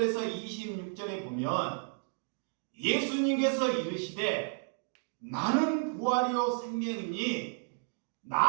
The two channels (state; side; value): silent; left; 56 dB below the other